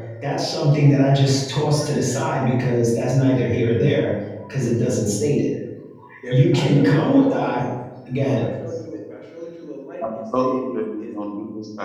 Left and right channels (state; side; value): identical; both; correlation 1.00